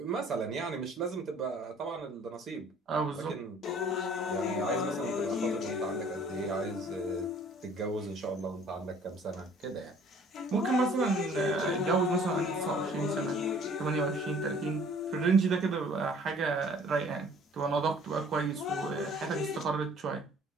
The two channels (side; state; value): both; normal; correlation 0.54